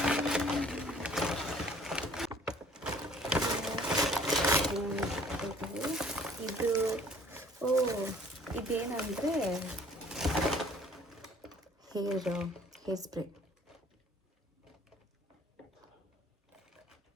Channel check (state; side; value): normal; both; correlation 0.55